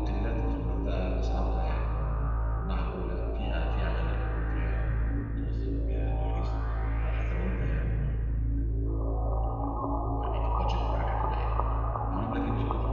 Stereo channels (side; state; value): both; identical; correlation 1.00